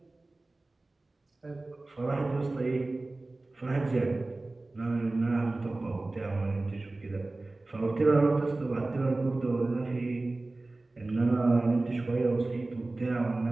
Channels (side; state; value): left; quieter; 3.1 dB